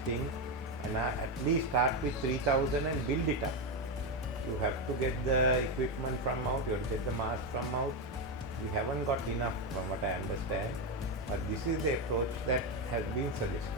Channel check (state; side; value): normal; both; correlation 0.09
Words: and at least start with 3,000 and build it up. You have to get the equipment from out, you have to get the mask from out. We haven't got enough from what I understand, but this is the approach that has been